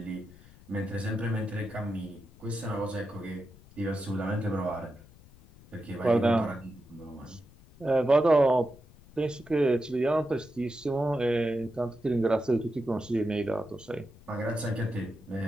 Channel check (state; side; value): noise; left; rumble, 23 dB below the sound